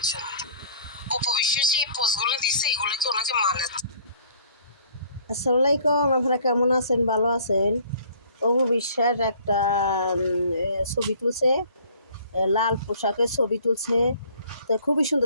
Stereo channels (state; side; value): inverted; both; correlation -0.54